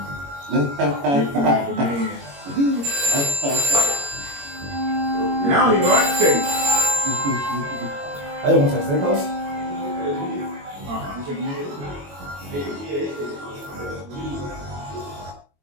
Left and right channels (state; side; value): late; left; 21 ms